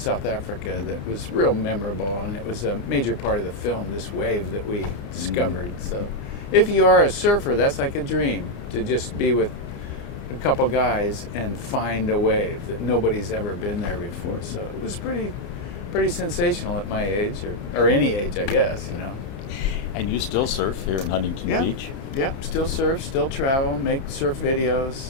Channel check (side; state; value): right; late; 31 ms